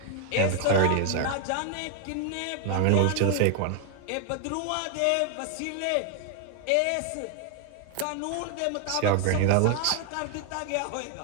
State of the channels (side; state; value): both; different; correlation 0.00